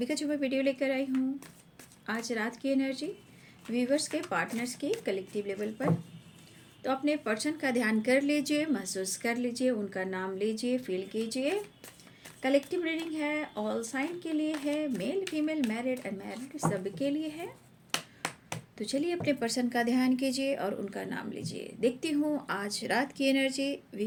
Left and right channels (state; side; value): identical; both; correlation 1.00